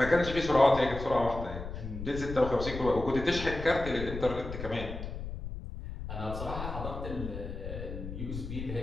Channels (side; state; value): left; noise; rumble, 8 dB below the sound